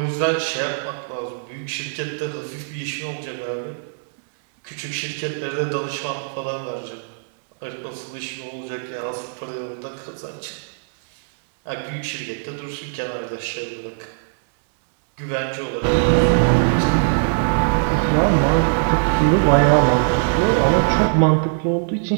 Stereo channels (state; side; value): silent; left; digital silence